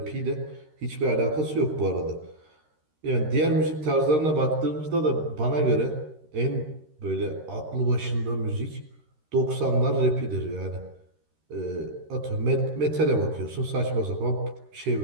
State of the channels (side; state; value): left; late; 13 ms